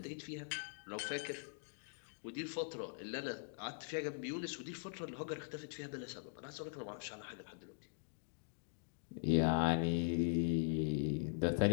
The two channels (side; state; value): right; silent; digital silence